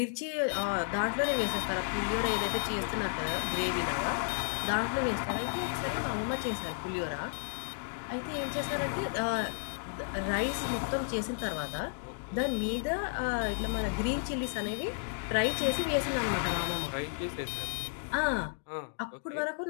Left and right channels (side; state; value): right; silent; digital silence